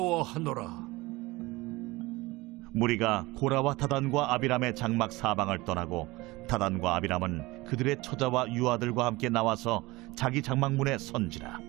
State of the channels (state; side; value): quieter; left; 21.2 dB